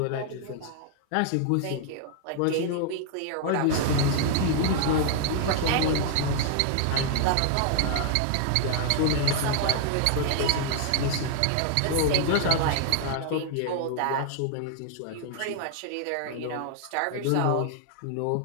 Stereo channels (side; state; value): both; different; correlation 0.00